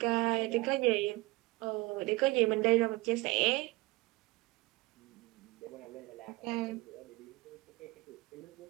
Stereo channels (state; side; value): quieter; left; 21.3 dB